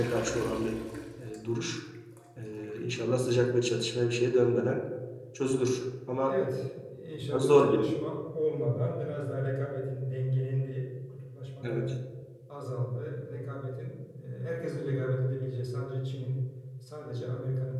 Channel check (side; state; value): both; identical; correlation 1.00